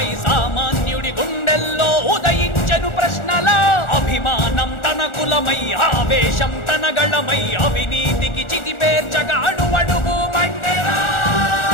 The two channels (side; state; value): right; late; 1.4 ms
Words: సామాన్యుడి గుండెల్లో ఉదయించెను ప్రశ్నల అభిమానం తన కులమై ఆవేశం తన గళమై అవినీతికి చితిపేర్చగా అణువణువు మండెరా